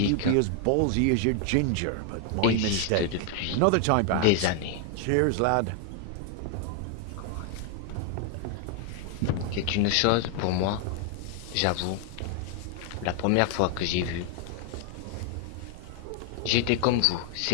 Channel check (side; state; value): both; different; correlation 0.00